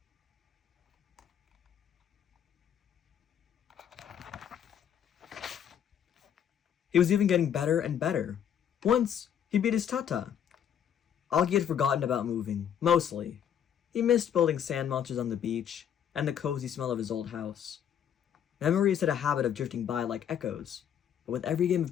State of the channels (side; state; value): right; quieter; 9.0 dB